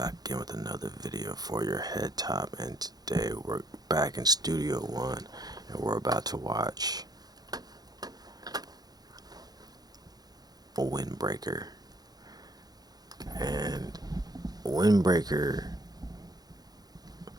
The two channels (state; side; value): late; left; 0.19 ms